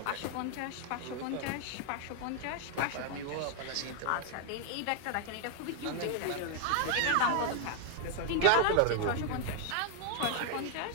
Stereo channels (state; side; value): different; both; correlation 0.00